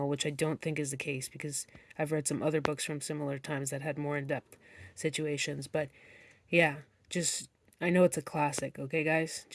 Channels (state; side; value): identical; both; correlation 1.00